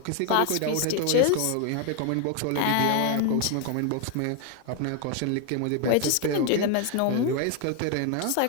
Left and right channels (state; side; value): different; both; correlation 0.01